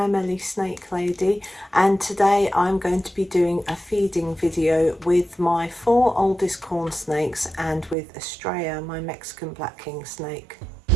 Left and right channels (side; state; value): left; drops out; at 8.0 s